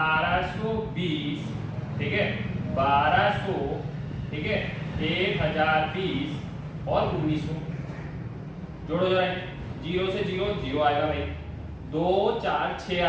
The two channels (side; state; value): both; identical; correlation 1.00